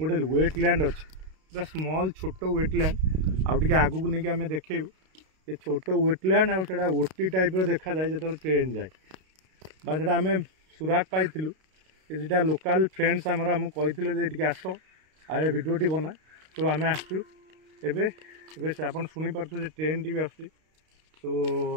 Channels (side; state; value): left; late; 32 ms